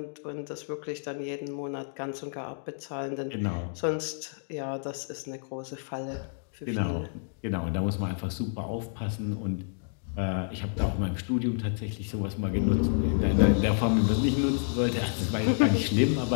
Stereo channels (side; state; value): right; silent; digital silence